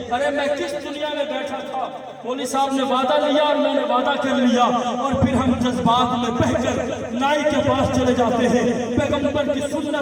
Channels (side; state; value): both; identical; correlation 1.00